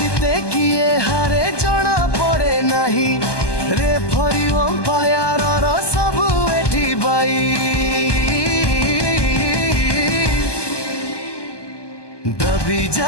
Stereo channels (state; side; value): late; right; 1.2 ms